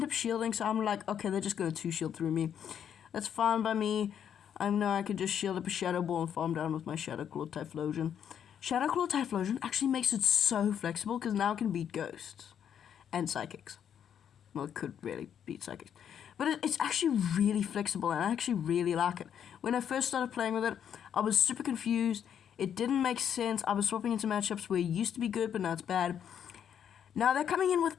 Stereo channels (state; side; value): quieter; right; 8.8 dB